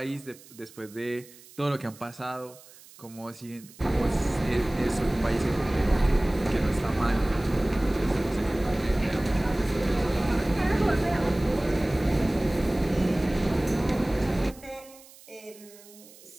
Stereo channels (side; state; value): right; noise; hiss, 22 dB below the sound